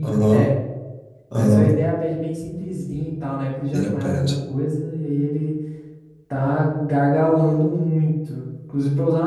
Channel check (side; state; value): both; identical; correlation 1.00